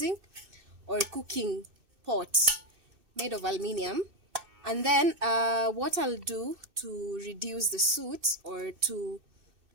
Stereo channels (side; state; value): left; late; 2.6 ms